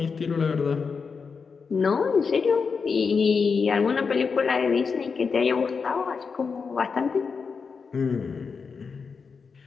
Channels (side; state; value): right; quieter; 5.4 dB